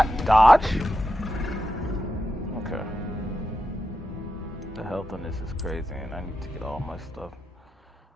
dodge? Okay. The health on this is crazy, and I need to get all my stuff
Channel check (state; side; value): normal; both; correlation 0.88